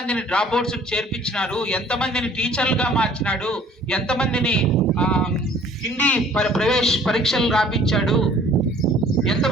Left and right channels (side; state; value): both; normal; correlation 0.53